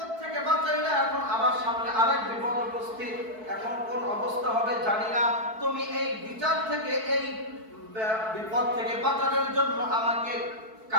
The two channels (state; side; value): late; left; 4.6 ms